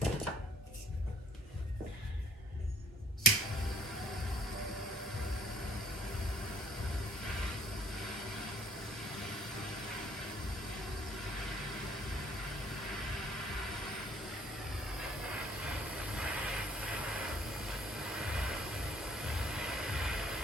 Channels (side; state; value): both; normal; correlation 0.59